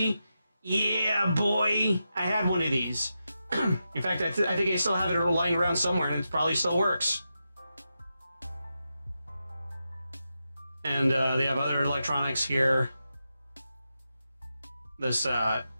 Yeah, boy, I had one of these. In fact, I think I still have it lying around somewhere, and it probably still works. And they have other electronics here. This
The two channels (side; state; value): both; inverted; correlation -0.88